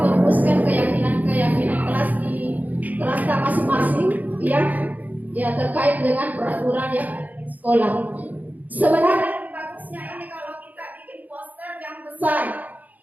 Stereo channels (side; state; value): left; late; 0.079 ms